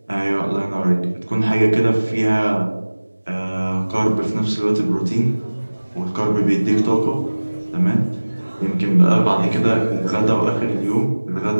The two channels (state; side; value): inverted; both; correlation -1.00